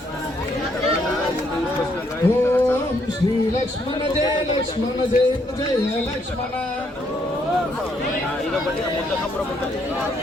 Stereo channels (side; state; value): both; normal; correlation 0.72